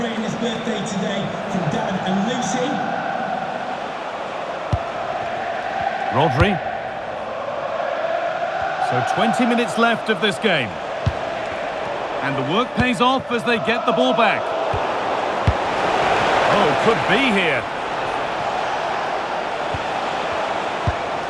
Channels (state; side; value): identical; both; correlation 1.00